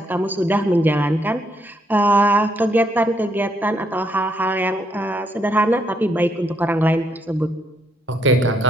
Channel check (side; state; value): both; normal; correlation 0.74